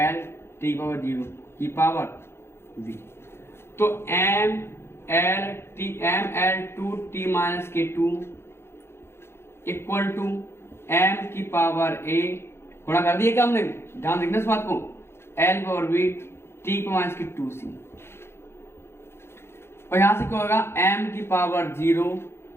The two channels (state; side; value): late; right; 0.12 ms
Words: टी पावर 0 की पावर वी। तो M L two T minus K two equal to M की पावर ए गुणा कर दिया क्या हमने? ध्यान देखना इस बात को। L power we T minus की 2c। और यहां से क्या होगा? एम की पावर 0